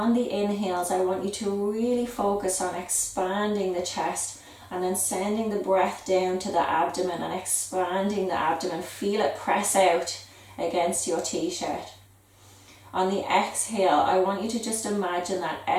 the inhales, I want you to really focus on expanding the chest and then sending the breath down to the abdomen and expanding the abdomen. Feel it press out against your t-shirt. On the exhale, I want you to just imagine that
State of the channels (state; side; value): identical; both; correlation 1.00